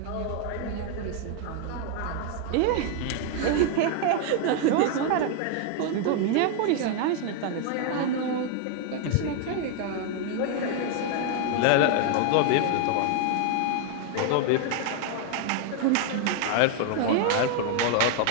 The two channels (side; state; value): both; different; correlation 0.00